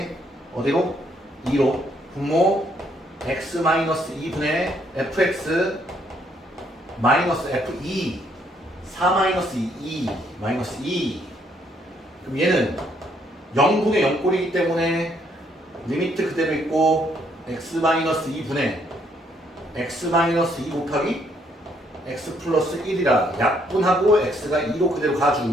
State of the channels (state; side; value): normal; both; correlation 0.70